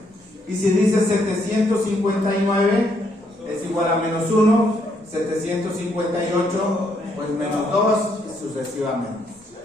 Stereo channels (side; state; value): both; normal; correlation 0.73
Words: Y si dices 759, es igual a menos 1. 758, pues menos 2, y sucesivamente.